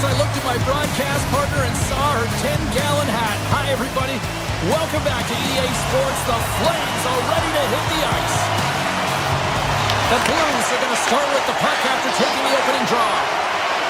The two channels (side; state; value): both; identical; correlation 1.00